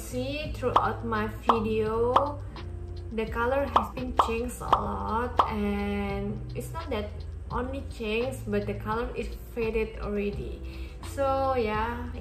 throughout my video, the color has been changed a lot, and it's not that only changed, but the color is faded already. So ya,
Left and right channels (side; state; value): both; identical; correlation 1.00